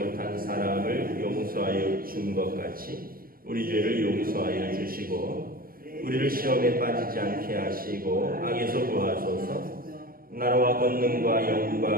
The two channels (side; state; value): left; late; 0.42 ms